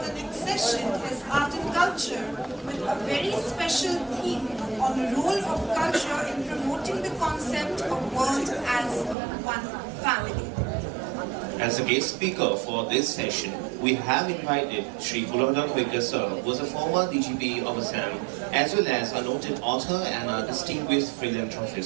the next session is art and culture, with a very special theme on the role of culture in promoting the concept of world as one family. As a guest speaker for this session, we have invited Sri Guwahati sir, who is a former DGP of Assam, as well as a noted author and a distinguished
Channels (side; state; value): left; drops out; at 9.2 s